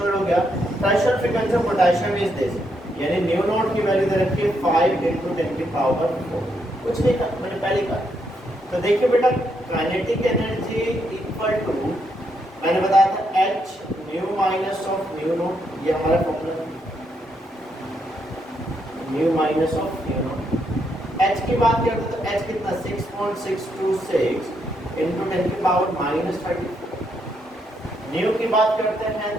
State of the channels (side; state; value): both; normal; correlation 0.78